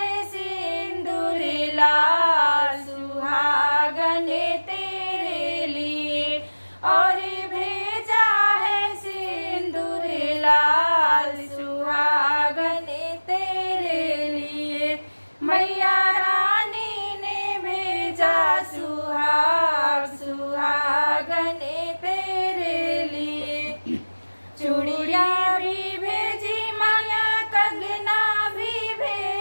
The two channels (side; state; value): both; inverted; correlation -1.00